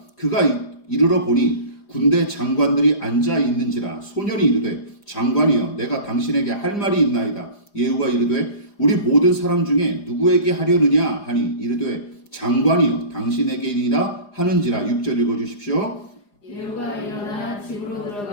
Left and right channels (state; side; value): late; right; 4.9 ms